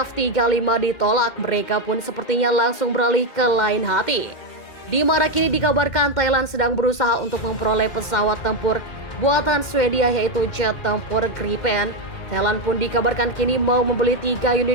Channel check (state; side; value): late; right; 2.1 ms